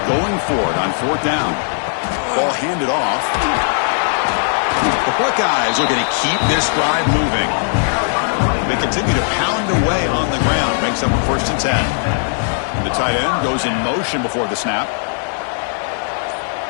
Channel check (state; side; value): silent; right; 64 dB below the other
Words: going for it on 4th down. Ball handed off. The Buckeyes looking to keep this drive moving. They continue to pound away on the ground. Makes up a 1st and 10. The tight end goes in motion before the snap.